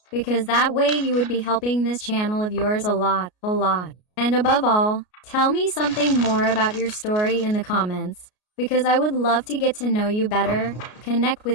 because that way you would be helping this channel of yours a lot. And above all, tell me something more about your story in the comments, because I would love to get to know you better, connect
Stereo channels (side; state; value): right; late; 33 ms